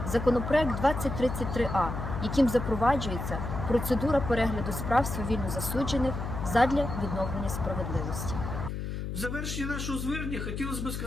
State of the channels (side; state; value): left; noise; hum, 4 dB below the sound